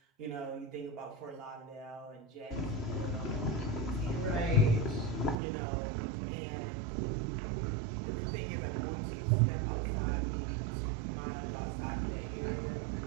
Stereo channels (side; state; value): left; drops out; at 5.4 s